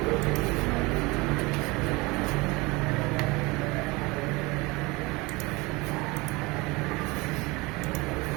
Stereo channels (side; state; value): left; quieter; 24.2 dB